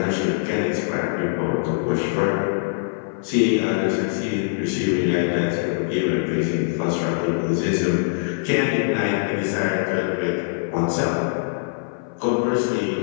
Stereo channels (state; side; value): silent; right; 57 dB below the other